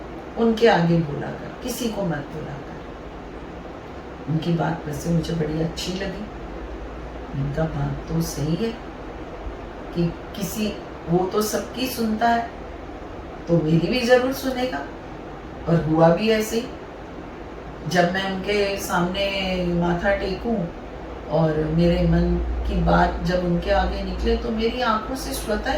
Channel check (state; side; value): identical; both; correlation 1.00